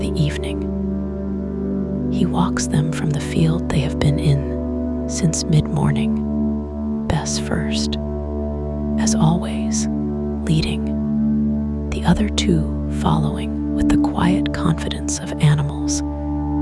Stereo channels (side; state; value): both; identical; correlation 1.00